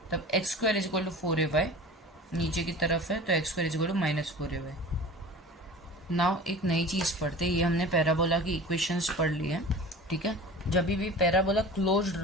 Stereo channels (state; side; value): normal; both; correlation 0.38